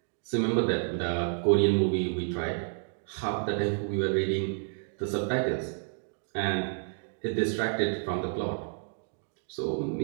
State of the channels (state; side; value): silent; left; 58 dB below the other